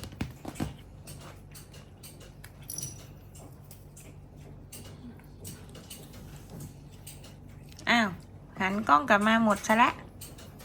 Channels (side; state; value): both; identical; correlation 1.00